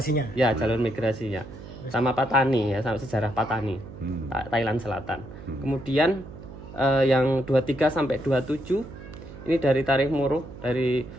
sama Patani ya, sama sejarah Patani, Thailand Selatan. Kemudian yang 23 sampai 27 ini dari Tarikh Muruh dari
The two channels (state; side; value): noise; right; hum, 15 dB below the sound